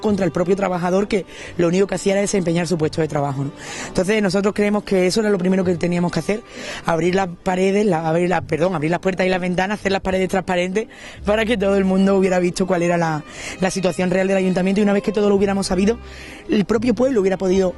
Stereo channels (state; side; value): identical; both; correlation 1.00